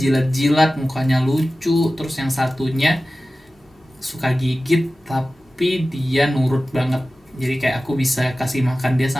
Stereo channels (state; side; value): normal; both; correlation 0.96